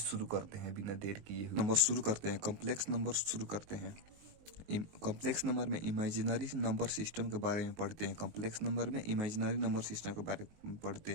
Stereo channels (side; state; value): left; late; 19 ms